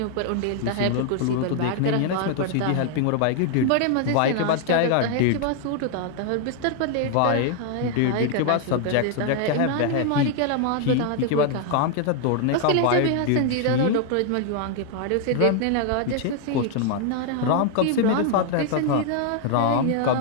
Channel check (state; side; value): different; both; correlation 0.00